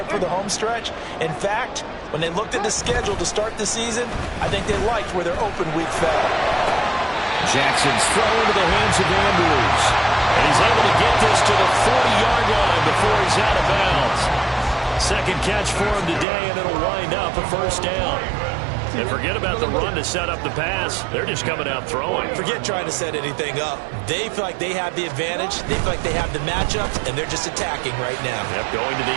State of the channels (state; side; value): drops out; left; at 16.2 s